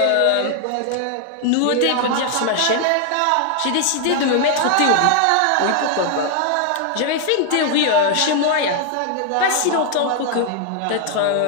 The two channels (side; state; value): both; different; correlation 0.00